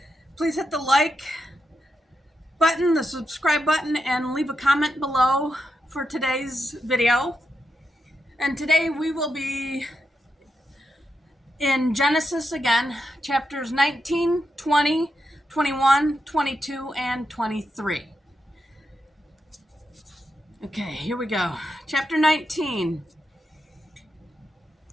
Please hit the like button, the subscribe button, and leave a comment below for today's video. And today we will be in Genesis again, chapters 19, 20, 21, 22, and 23. Okay, here we go. Chapter 19.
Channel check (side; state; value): both; normal; correlation 0.85